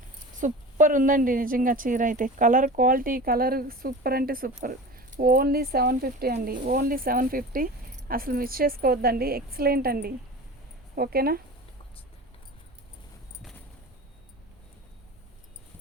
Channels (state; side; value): normal; both; correlation 0.34